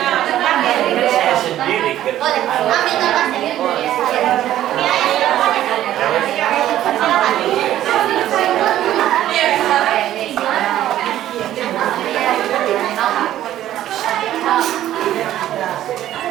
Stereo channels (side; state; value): left; quieter; 12.8 dB